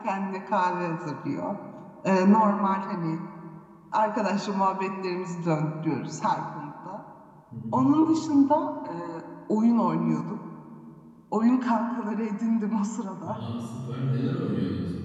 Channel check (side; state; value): both; identical; correlation 1.00